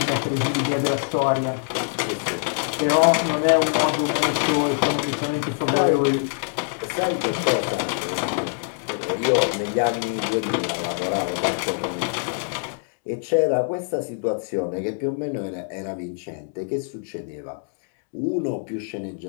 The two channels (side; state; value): right; silent; digital silence